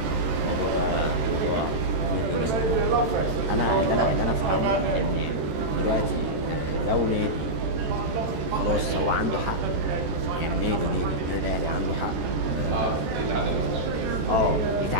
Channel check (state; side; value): late; left; 13 ms